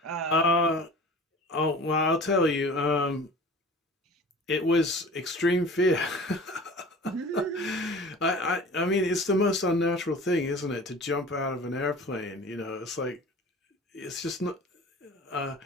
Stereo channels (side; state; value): both; normal; correlation 0.41